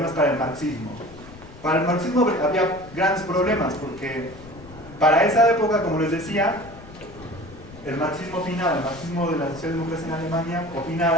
para el marxismo. Para el marxismo había grandes problemas porque para esa época, como les decía, el marxismo de la socialdemocracia en Alemania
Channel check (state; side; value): noise; left; rumble, 18 dB below the sound